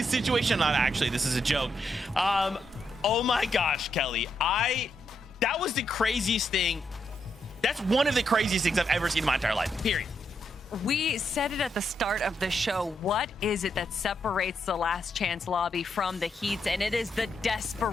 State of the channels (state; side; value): normal; both; correlation 0.80